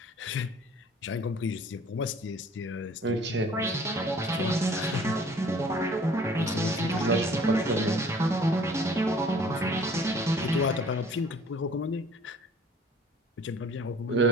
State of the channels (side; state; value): both; normal; correlation 0.52